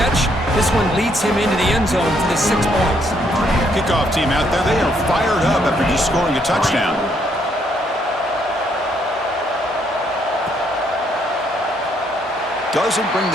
This one leads him into the end zone for the 6 points. Kickoff team out there, they are fired up after just scoring a touchdown. Doesn't bring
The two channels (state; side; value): normal; both; correlation 0.71